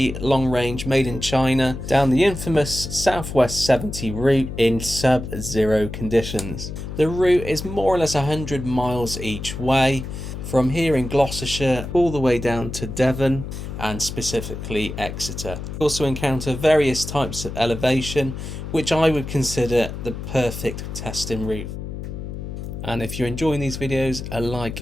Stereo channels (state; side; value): noise; left; hum, 8 dB below the sound